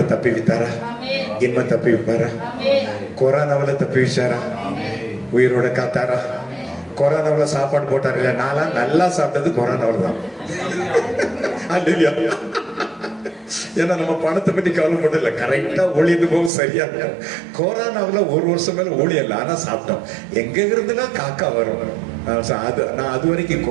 தப்புவித்தாரா? இன்னும் தப்புவிப்பாரா? கொரோனாவில தப்புவிச்சாரா? உயிரோட காத்தாரா? கொரோனாவில சாப்பாடு போட்டாரு இல்ல? நான்லாம் நல்லா சாப்பிட்டது கொரோனாவில தான். ஏன்னா நம்ம பணத்தை பத்தி கவலைப்படல, கரெக்டா ஊழியது போகும், சரியா இருக்கும். கொரோனாவுல ஒரு வருஷம் மேல ஊழியம் இல்லை, ஆனா சாப்பிட்டோம். எங்க இருந்துலாம் காக்கா வரும். நான் அது வரைக்கும்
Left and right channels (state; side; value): drops out; left; at 16.5 s